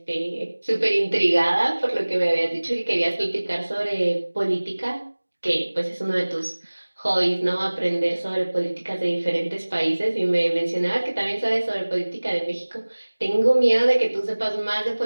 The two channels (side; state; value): both; inverted; correlation -1.00